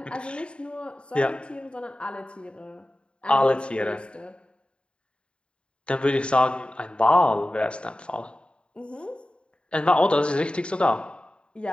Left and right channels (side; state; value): right; late; 0.054 ms